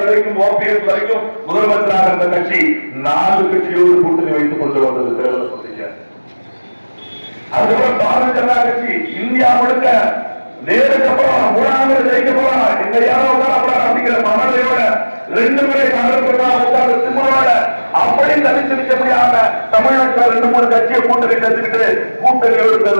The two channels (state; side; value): inverted; both; correlation -1.00